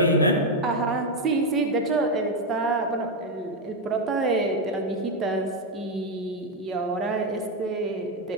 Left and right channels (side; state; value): both; normal; correlation 0.05